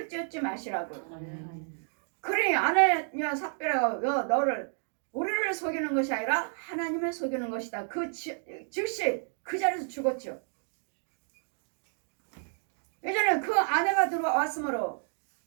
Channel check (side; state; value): left; silent; 55 dB below the other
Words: 쫓지 마시라고. 그러니 아나니아 삽비라가 우리를 속이는 것이 아니라 하나님을 속이는 것이다. 즉시 그 자리에서 죽었죠. 이제는 그 아내가 들어왔으므로